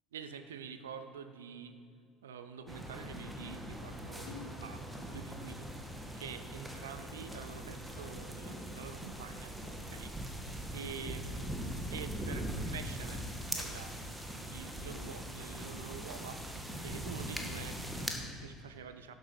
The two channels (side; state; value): both; normal; correlation 0.46